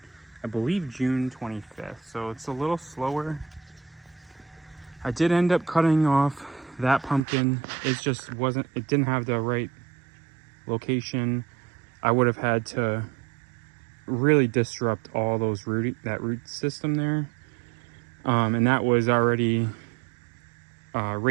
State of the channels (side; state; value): left; drops out; at 7.2 s